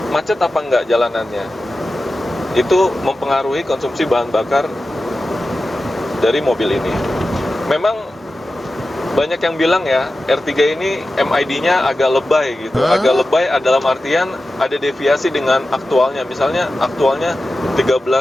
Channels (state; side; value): normal; both; correlation 0.94